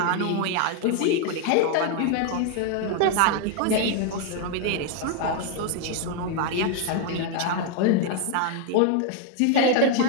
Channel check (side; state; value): both; different; correlation 0.00